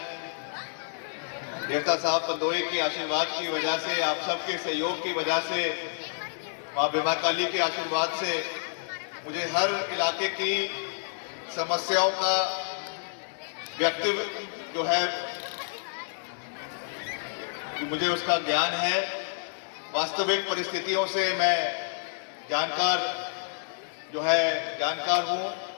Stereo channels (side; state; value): right; silent; 59 dB below the other